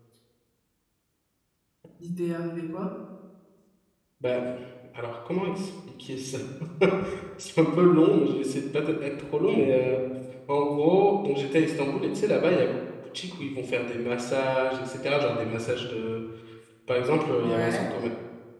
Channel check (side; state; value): both; identical; correlation 1.00